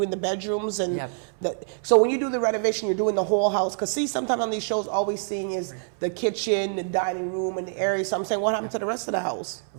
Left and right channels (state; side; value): silent; left; 61 dB below the other